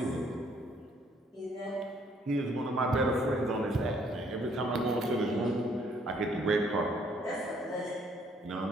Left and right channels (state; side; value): normal; both; correlation 0.65